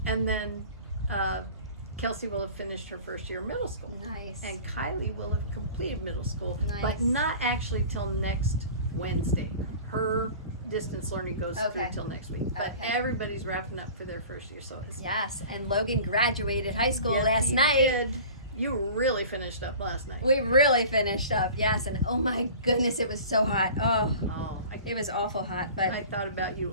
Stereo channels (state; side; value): inverted; both; correlation -0.41